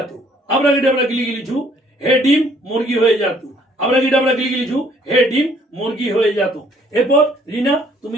আবরা গিটাবরা গিলি গিলি ঝু, হে ডিম মুরগি হয়ে যেত। আবরা গিটাবরা গিলি গিলি ঝু, হে ডিম মুরগি হয়ে যেত। এরপর রিনা,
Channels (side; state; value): both; normal; correlation 0.61